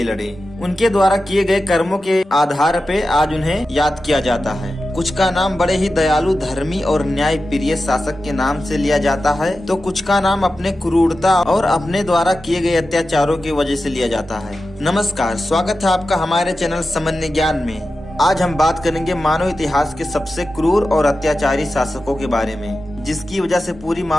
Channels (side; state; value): both; normal; correlation 0.92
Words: लड़े। उनके द्वारा किए गए कर्मों के आधार पे आज उन्हें याद किया जाता है। कुछ का नाम बड़े ही दयालु, धर्मी और न्याय प्रिय शासक के नाम से लिया जाता है, तो कुछ का नाम अपने क्रूरता और अपने द्वारा किए गए अत्याचारों की वजह से लिया जाता है। नमस्कार, स्वागत है आपका हमारे चैनल सामान्य ज्ञान में। आज हम बात करेंगे मानव इतिहास के सबसे क्रूर और अत्याचारी शासकों के बारे में, जिसकी वजह से पूरी